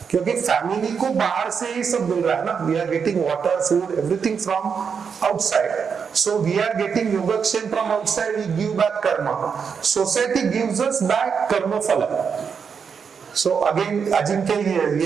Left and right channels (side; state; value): left; quieter; 6.4 dB